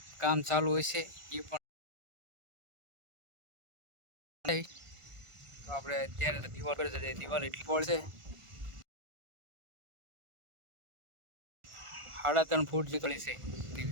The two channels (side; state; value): left; late; 1.5 ms